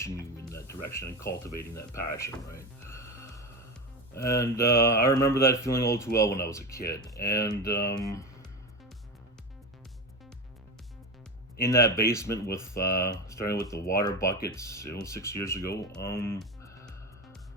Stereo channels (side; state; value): both; normal; correlation 0.21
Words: you in that direction and cultivating that passion, right? And I remember that feeling all too well when I was a kid. And in that basement with starting with the water buckets, 6 years ago,